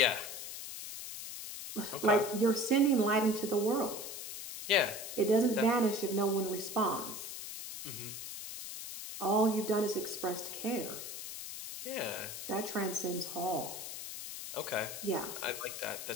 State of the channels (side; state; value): left; noise; hiss, 8 dB below the sound